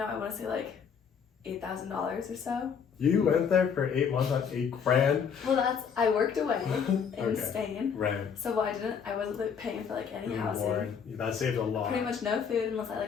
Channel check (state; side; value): quieter; right; 6.8 dB